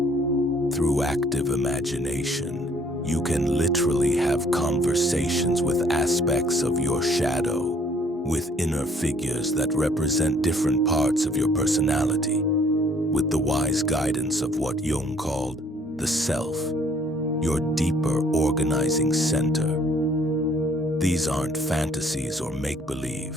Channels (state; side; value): normal; both; correlation 0.61